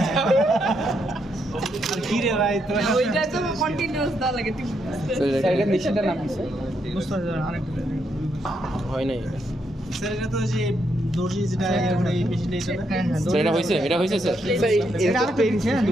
ওইটা তো কন্টিনিউয়াস দেওয়া লাগে স্যার এটা মেশিনটার নাম কি স্যার? বুঝতে পারছেন আরেকটা হয় নাই স্যার এটা তো যে দর্জি যেটা এই মেশিনটা এটা না হ্যাঁ হ্যাঁ স্যার এটা হয়েছে স্যার স্যার এটা আরেকটা দিচ্ছে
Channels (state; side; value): normal; both; correlation 0.78